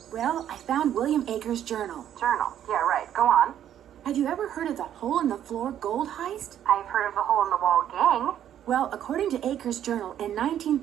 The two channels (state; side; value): quieter; left; 10.6 dB